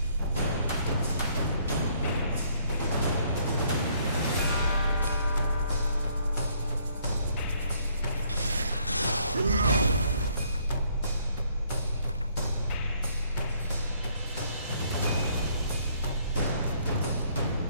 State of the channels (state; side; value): inverted; both; correlation -0.66